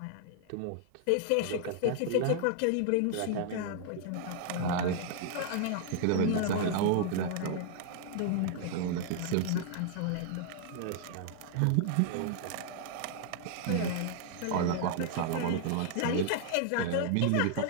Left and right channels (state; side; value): different; both; correlation 0.00